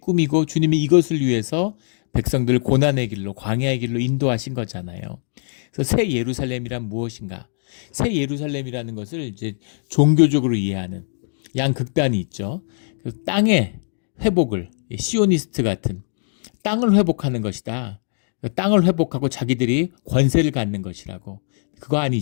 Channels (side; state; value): right; silent; digital silence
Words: 주님이 이것을 위해서 백성들을 고난의 길로 광야의 길로 인도하신 거잖아요. 그래서 새 예루살렘이란 무엇인가? 새 예루살렘이라는 것을 이제 종교적으로 이해하는 양극단이 있죠. 그래서 땅의 회복을 시오니스트 같은 땅을 회복하는 것이다. 땅을 회복하고 자기들이 권세를 갖는 것이라고. 그거